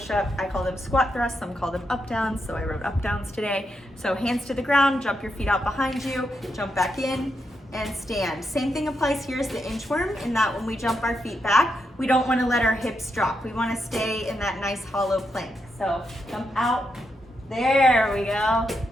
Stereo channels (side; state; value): both; normal; correlation 0.83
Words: I call them squat thrusts, some call them up downs, so I wrote up downs today. So hands to the ground, jump your feet out behind you, jump back in, and stand. Same thing applies here as the inchworm, in that when we jump our feet back, we don't want to let our hips drop. We want to stay in that nice hollow plank. So jump out, there we go,